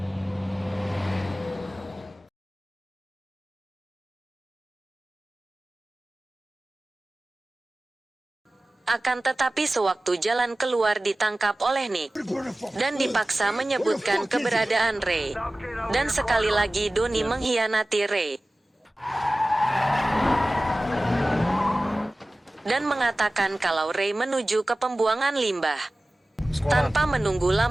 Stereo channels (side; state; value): both; normal; correlation 0.97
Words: Akan tetapi sewaktu jalan keluar ditangkap oleh Nick dan dipaksa menyebutkan keberadaan Ray. Dan sekali lagi Doni mengkhianati Ray dan mengatakan kalau Ray menuju ke pembuangan limbah. Tanpa menunggu